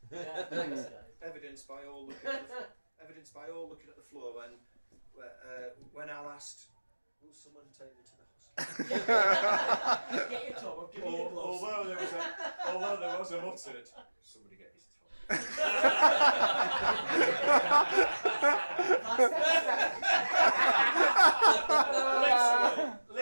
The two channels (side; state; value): both; inverted; correlation -1.00